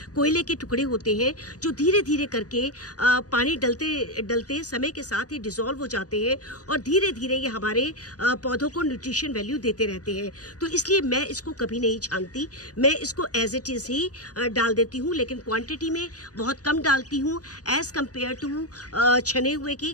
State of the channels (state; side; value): late; right; 0.67 ms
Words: कोयले के टुकड़े होते हैं जो धीरे धीरे करके पानी डलते डलते समय के साथ ही डिज़ोल्व हो जाते हैं और धीरे धीरे ये हमारे पौधों को न्यूट्रिशन वैल्यू देते रहते हैं। तो इसलिए मैं इसको कभी नहीं छानती, मैं इसको एज इट इज़ ही डाल देती हूँ, लेकिन क्वान्टिटी में बहुत कम डालती हूँ एज़ कम्पेयर टू छने हुए के,